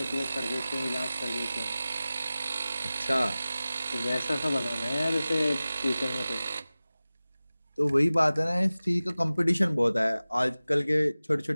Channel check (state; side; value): inverted; both; correlation -0.97